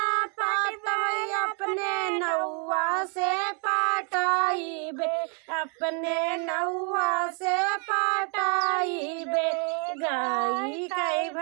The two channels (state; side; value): quieter; left; 39.0 dB